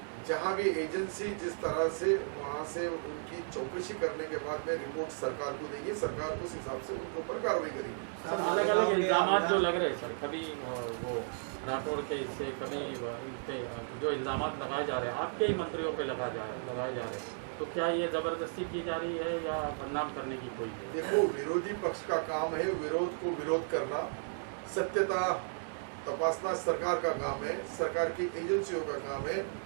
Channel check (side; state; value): left; silent; 55 dB below the other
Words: जहां भी एजेंसी जिस तरह से वहां से उनकी चौकसी करने के बाद में रिपोर्ट सरकार को देंगे, सरकार उस हिसाब से उनके ऊपर कार्रवाई करेगी। सर अलग अलग इल्जाम जो लग रहे हैं सर, कभी वो राठौड़ के इससे, कभी इन पे जो इल्जाम लगाए जा रहे हैं आपके ही मंत्रियों पे लगाए जा रहे हैं, तो क्या ये जबरदस्ती की जा रही है या बदनाम करने की कोई है? देखो, विरोधी पक्ष का काम है विरोध को विरोध करना, सत्यता तपासना सरकार का काम है, सरकार की एजेंसियों का काम है,